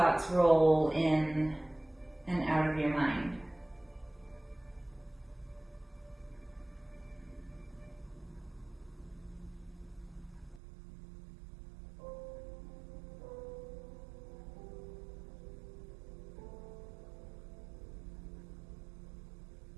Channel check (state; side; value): drops out; left; at 10.6 s